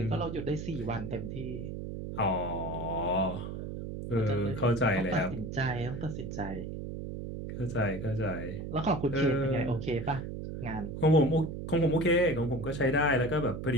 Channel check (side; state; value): right; noise; hum, 7 dB below the sound